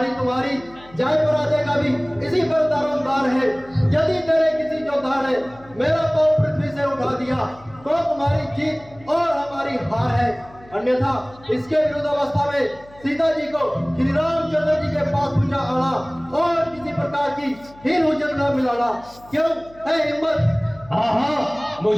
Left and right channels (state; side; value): noise; left; hum, 24 dB below the sound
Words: तुम्हारी जय पराजय का भी इसी पर दारोमदार है। यदि तेरे किसी योद्धा ने मेरा पांव पृथ्वी से उठा दिया तो तुम्हारी जीत और हमारी हार है। अन्यथा इसके विरुद्ध अवस्था में सीता जी को श्री रामचंद्र जी के पास पूजा आना और किसी प्रकार की हीन हुज्जत न मिलाना। क्यों है हिम्मत? हाँ हाँ,